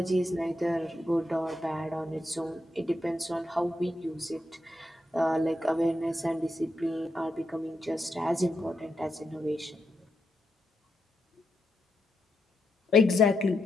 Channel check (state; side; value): normal; both; correlation 0.83